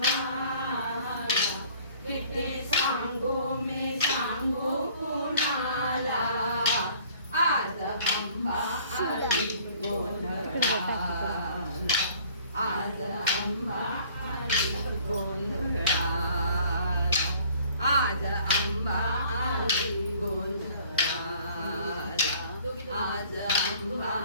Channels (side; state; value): both; inverted; correlation -0.55